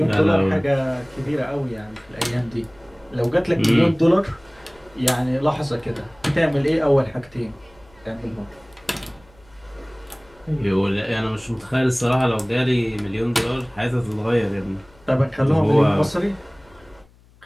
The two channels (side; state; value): left; noise; hum, 28 dB below the sound